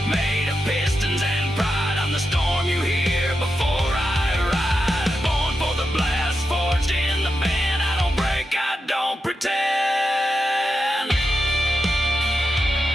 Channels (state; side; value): normal; both; correlation 0.88